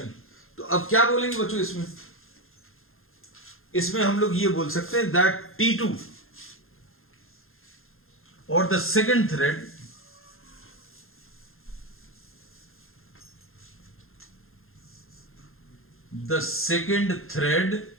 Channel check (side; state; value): right; late; 0.61 ms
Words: तो अब क्या बोलेंगे बच्चों इसमें हम लोग ये बोल सकते हैं दैट T2 और the second thread